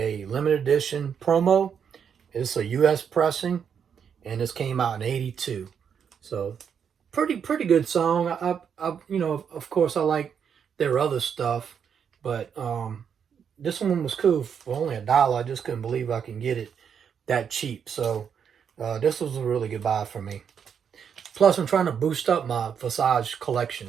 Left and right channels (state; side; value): quieter; left; 7.5 dB